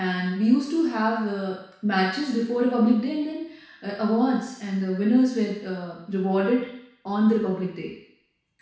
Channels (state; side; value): identical; both; correlation 1.00